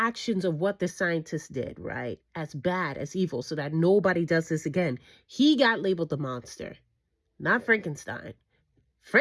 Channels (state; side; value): identical; both; correlation 1.00